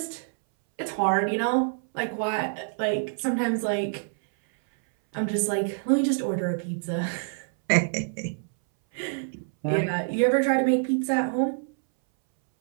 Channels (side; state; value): left; silent; 60 dB below the other